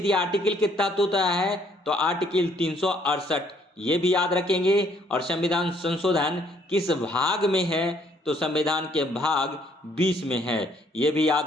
या आर्टिकल के तहत होता है? तो आर्टिकल 368, ये भी याद रखेंगे। और संविधान संशोधन किस भाग में है? तो संविधान के भाग 20 में है, ये भी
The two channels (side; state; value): both; normal; correlation 0.66